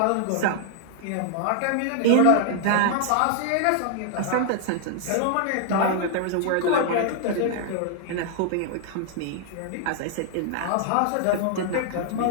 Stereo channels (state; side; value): different; both; correlation 0.00